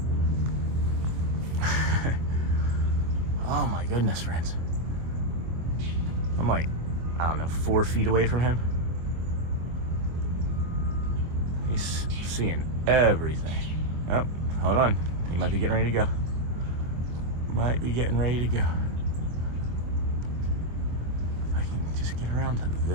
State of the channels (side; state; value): left; late; 25 ms